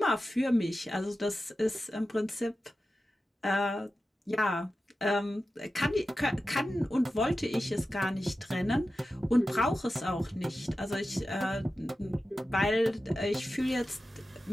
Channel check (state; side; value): normal; both; correlation 0.93